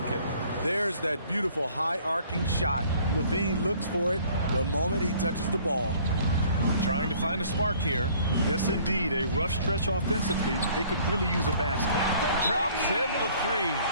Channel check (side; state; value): both; inverted; correlation -0.56